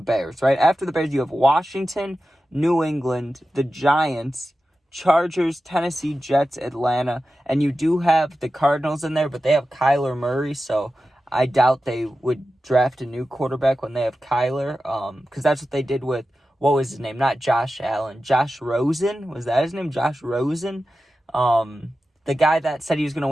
right? After the Bears, you have Washington, New England, the Giants, Chargers, Tennessee, Jets, Atlanta, and you do have the Cardinals in there, but they have Kyler Murray, so I doubt they would draft a new quarterback when they have Kyler, because that's what they did with, what was his name? Not Josh Allen. Josh Rosen? Was that his name? Josh Rosen? The guy that said he was going to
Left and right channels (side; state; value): both; normal; correlation 0.93